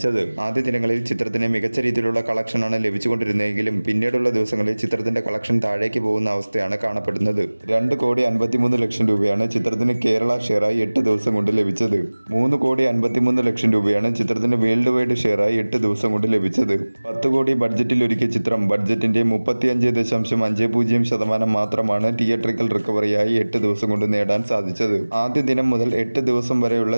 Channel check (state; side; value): inverted; both; correlation -1.00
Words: ആദ്യ ദിനങ്ങളിൽ ചിത്രത്തിന് മികച്ച രീതിയിലുള്ള കളക്ഷനാണ് ലഭിച്ചുകൊണ്ടിരുന്നതെങ്കിലും പിന്നീടുള്ള ദിവസങ്ങളിൽ ചിത്രത്തിന്റെ കളക്ഷൻ താഴേക്ക് പോകുന്ന അവസ്ഥയാണ് കാണപ്പെടുന്നത്. 2,53,00,000 രൂപയാണ് ചിത്രത്തിന് കേരള ഷെയറായി 8 ദിവസം കൊണ്ട് ലഭിച്ചത്. 3,53,00,000 രൂപയാണ് ചിത്രത്തിന് വേൾഡ് വൈഡ് ഷെയറായി 8 ദിവസം കൊണ്ട് ലഭിച്ചത്. 10 കോടി ബഡ്ജറ്റിൽ ഒരുക്കിയ ചിത്രം ബഡ്ജറ്റിന്റെ 35.50% മാത്രമാണ് തിയേറ്ററിക്കൽ റിക്കവറിയായി 8 ദിവസം കൊണ്ട് നേടാൻ സാധിച്ചത്. ആദ്യ ദിനം മുതൽ 8 ദിവസം വരെയുള്ള